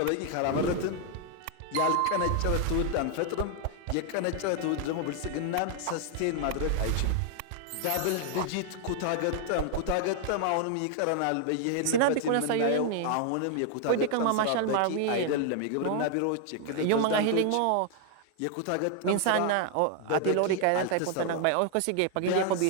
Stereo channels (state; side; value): different; both; correlation 0.00